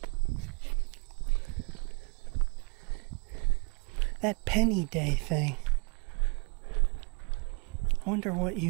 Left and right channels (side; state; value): left; quieter; 32.3 dB